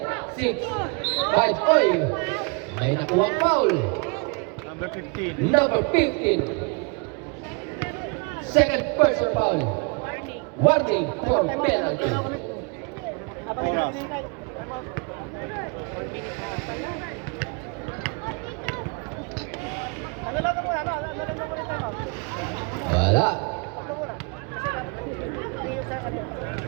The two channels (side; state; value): left; quieter; 33.8 dB